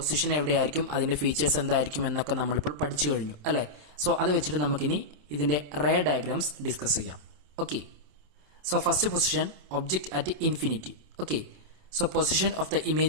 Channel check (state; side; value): late; left; 27 ms